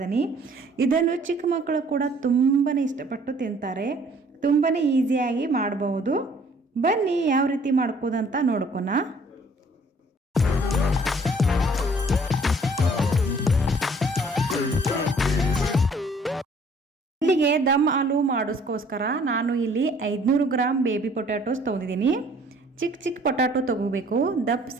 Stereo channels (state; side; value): normal; both; correlation 0.57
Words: ಇದನ್ನು ಚಿಕ್ಕ ಮಕ್ಕಳು ಕೂಡ ತುಂಬಾ ಇಷ್ಟಪಟ್ಟು ತಿಂತಾರೆ. ತುಂಬಾ ಈಸಿಯಾಗಿ ಮಾಡಬಹುದು. ಬನ್ನಿ ಯಾವ ರೀತಿ ಮಾಡ್ಕೋದಂತ ನೋಡ್ಕೊಣ. ಇಲ್ಲಿಗೆ ದಮ್ ಆಲೂ ಮಾಡೋಸ್ಕೋಸ್ಕರ ನಾನು ಇಲ್ಲಿ 500 ಗ್ರಾಮ್ ಬೇಬಿ ಪೊಟ್ಯಾಟೋಸ್ ತೊಗೊಂಡಿದ್ದೀನಿ. ಚಿಕ್ಕ ಪೊಟ್ಯಾಟೊ ತೊಗೋಬೇಕು, ದಪ್ಪ